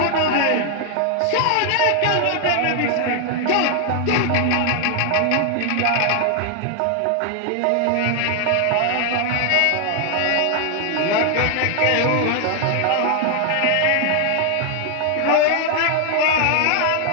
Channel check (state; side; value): different; both; correlation 0.00